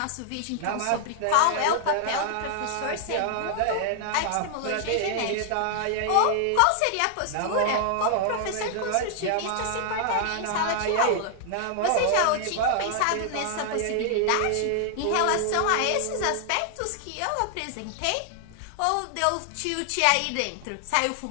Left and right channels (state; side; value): different; both; correlation 0.00